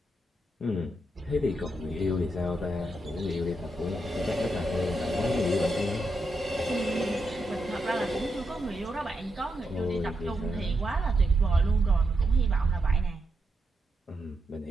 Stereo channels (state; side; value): normal; both; correlation 0.84